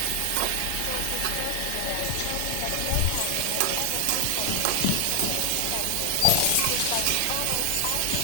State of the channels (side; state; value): both; different; correlation 0.00